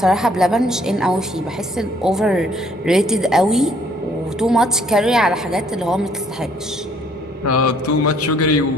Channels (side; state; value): both; normal; correlation 0.62